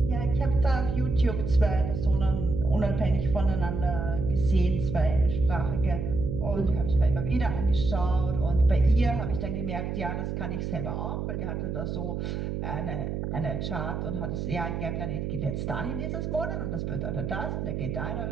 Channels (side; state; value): right; noise; hum, 3 dB below the sound